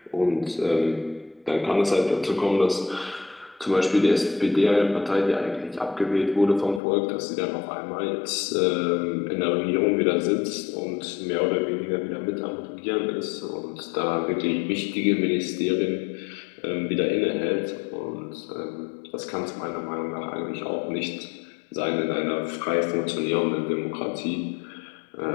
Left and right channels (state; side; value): drops out; right; at 6.8 s